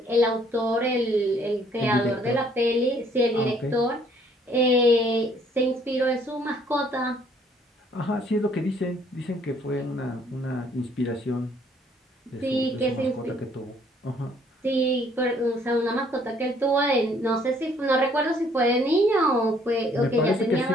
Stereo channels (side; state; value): both; normal; correlation 0.63